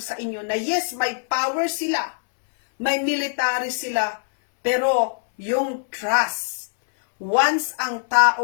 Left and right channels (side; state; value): right; silent; 63 dB below the other